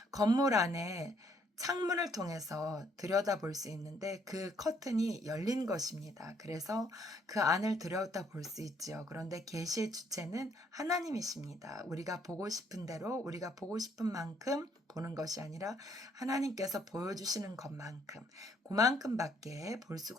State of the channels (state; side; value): normal; both; correlation 0.67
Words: 건물 안에 창문을 통해서 들여다볼 수 있는데 그 커튼이 열린 것입니다. 그래서 그 안을 들여다볼 수 있지요. 그런데 계시의 주체는 하나님이십니다. 우리가 보고 싶은 대로 우리가 보고 싶은 만큼 보는 것이 아니라 하나님께서 보여주시는 것만큼 그만큼밖에 볼